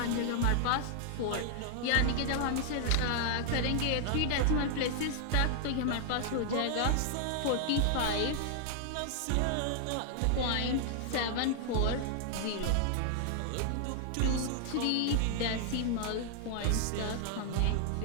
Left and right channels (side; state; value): both; different; correlation 0.00